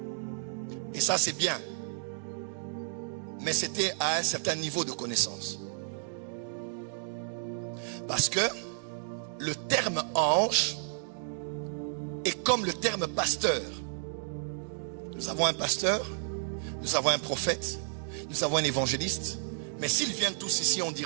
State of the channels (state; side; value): silent; left; digital silence